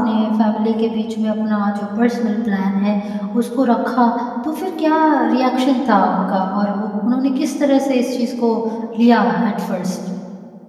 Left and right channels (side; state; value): both; identical; correlation 1.00